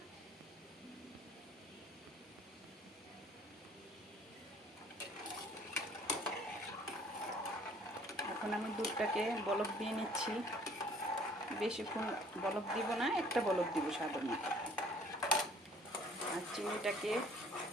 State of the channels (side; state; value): both; normal; correlation 0.56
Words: এখন আমি দুধটাকে বলক দিয়ে নিচ্ছি। বেশিক্ষণ বলক দিব না, একটা বলক দিব সাধারণ। আর চিনিটাকে